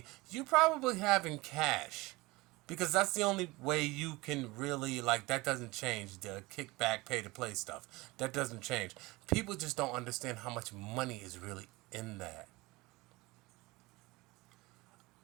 you probably have in cash. Because that's the only way you can really, like, that doesn't change. The kickback, pay to play stuff. That doesn't change. People just don't understand how much money is really in that.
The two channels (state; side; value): quieter; left; 21.9 dB